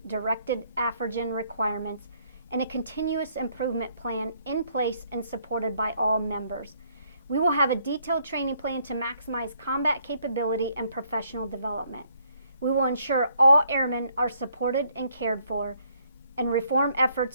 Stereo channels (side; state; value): both; inverted; correlation -0.68